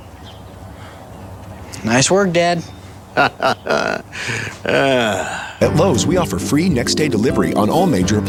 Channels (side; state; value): both; identical; correlation 1.00